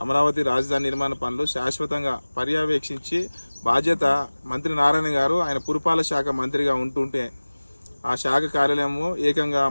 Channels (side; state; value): both; inverted; correlation -1.00